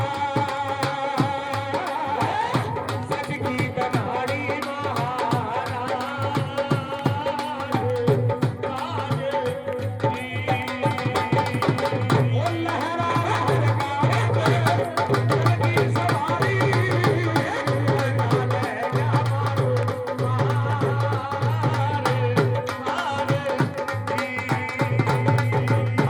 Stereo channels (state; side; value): identical; both; correlation 1.00